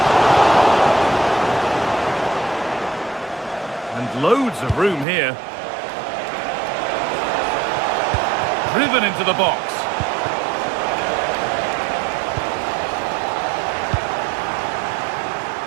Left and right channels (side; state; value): left; drops out; at 5.1 s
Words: And loads of room here. Driven into the box.